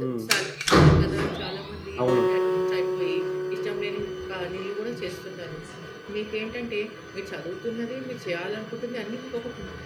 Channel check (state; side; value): identical; both; correlation 1.00